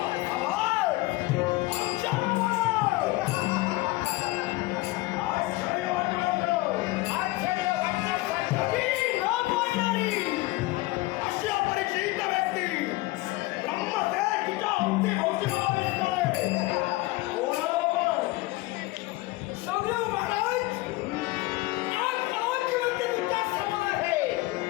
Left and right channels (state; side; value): quieter; right; 20.3 dB